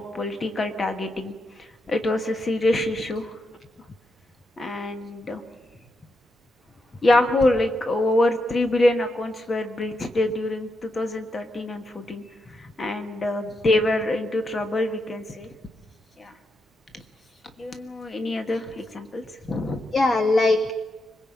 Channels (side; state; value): both; normal; correlation 0.84